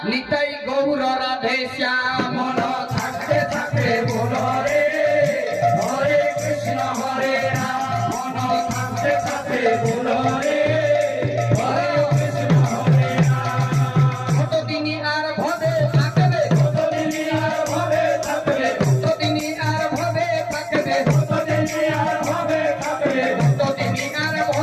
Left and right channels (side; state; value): both; identical; correlation 1.00